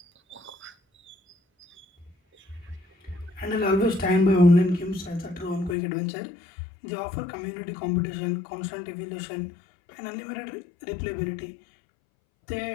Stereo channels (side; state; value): right; drops out; at 5.8 s